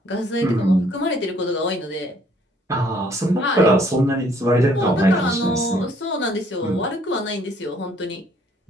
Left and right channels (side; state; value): both; normal; correlation 0.63